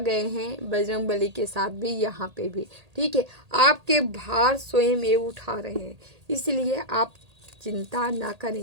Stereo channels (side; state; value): left; late; 1.8 ms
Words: हैं, बजरंगबली के साथ भी यहाँ पे भी, ठीक है। आपके भार स्वयं ये उठा रहे हैं, इसलिए आप चिंता ना करें,